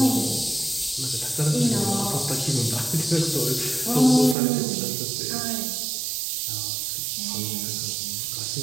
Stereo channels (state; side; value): drops out; left; at 4.4 s